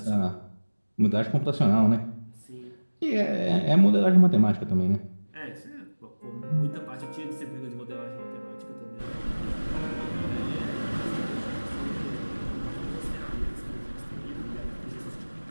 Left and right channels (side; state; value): both; inverted; correlation -1.00